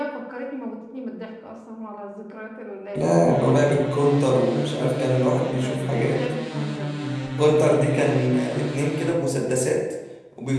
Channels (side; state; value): both; identical; correlation 1.00